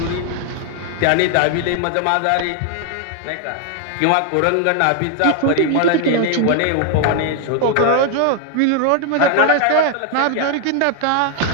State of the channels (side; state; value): both; different; correlation 0.00